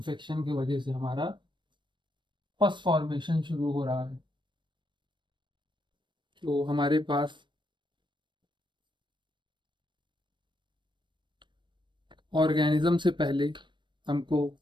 की वजह से हमारा पस फॉर्मेशन शुरू हो रहा है, तो हमारे पास ऑर्गेनिज्म से पहले हमको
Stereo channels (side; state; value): left; late; 0.22 ms